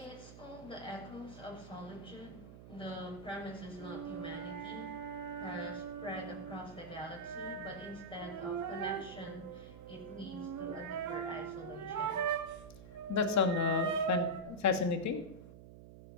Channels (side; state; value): right; noise; hum, 14 dB below the sound